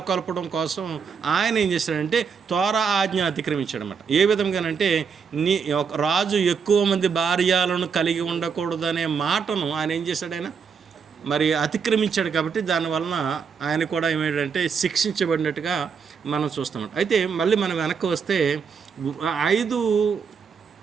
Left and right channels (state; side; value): quieter; left; 6.1 dB